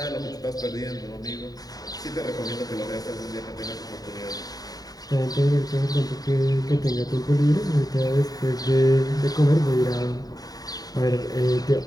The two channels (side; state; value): right; late; 0.18 ms